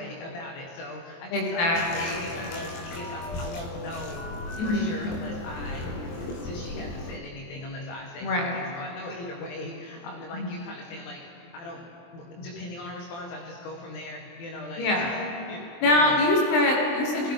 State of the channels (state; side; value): late; right; 23 ms